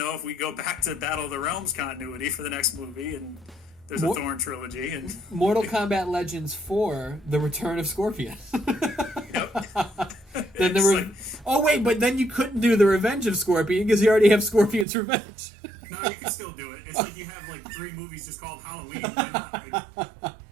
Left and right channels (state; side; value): drops out; left; at 14.9 s